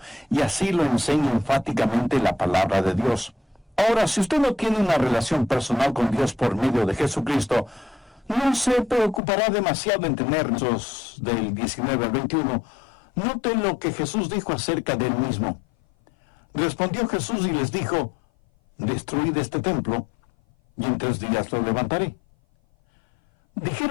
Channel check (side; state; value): right; drops out; at 9.2 s